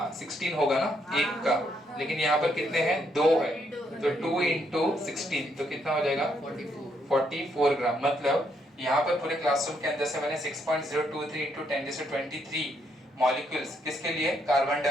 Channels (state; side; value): normal; both; correlation 0.74